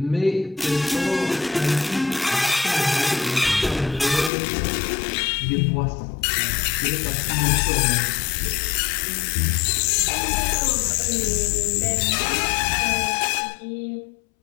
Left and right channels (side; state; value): right; drops out; at 4.3 s